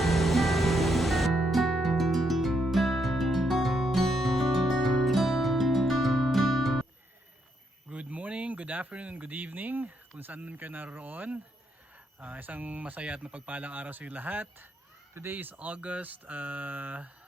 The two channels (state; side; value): normal; both; correlation 0.77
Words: Good morning, good afternoon, good evening kung saan man kayo naroon. Isang masaya at mapagpalang araw sa inyo lahat. Today is August